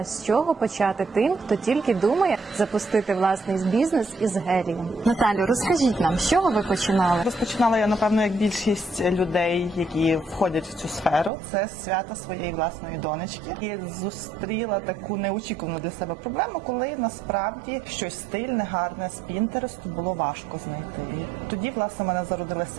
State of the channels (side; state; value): left; drops out; at 11.3 s